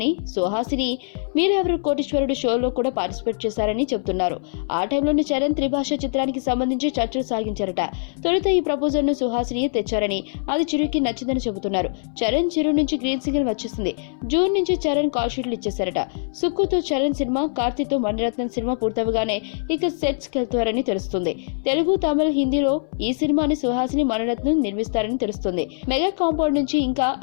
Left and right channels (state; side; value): silent; right; 61 dB below the other